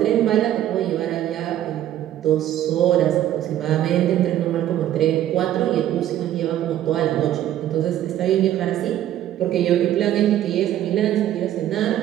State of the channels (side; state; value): left; quieter; 12.1 dB